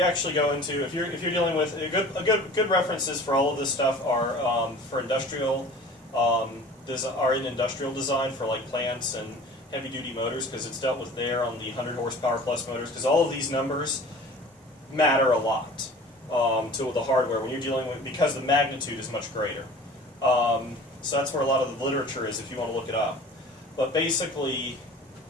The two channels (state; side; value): normal; both; correlation 0.43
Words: actually go into, if you're dealing with, good references for all of this stuff are for industrial, are in industrial design for like plants and heavy duty motors, because it's dealt with there on the 100 horsepower plus motors, because all of these numbers matter a lot to the hardware when you're dealing with, because the magnitude is much greater. So that's where a lot of the literature is if you want to look it up. But basically,